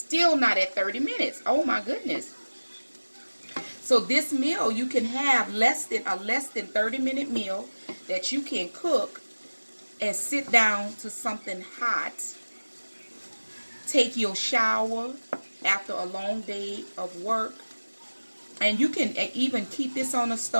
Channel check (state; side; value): inverted; both; correlation -1.00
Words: not at 30 minutes. Oh my goodness. So this meal, you can have less than 30-minute meal that you can cook and sit down to something hot. Take your shower after a long day of work. And you can even keep this on the